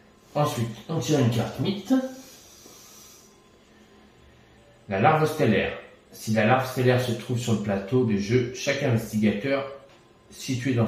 Ensuite, on tire une carte mythe. La larve stellaire. Si la larve stellaire se trouve sur le plateau de jeu, chaque investigateur situé dans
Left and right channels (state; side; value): identical; both; correlation 1.00